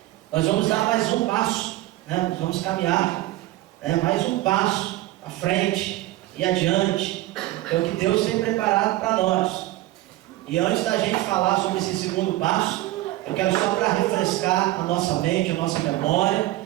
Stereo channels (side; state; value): left; quieter; 16.7 dB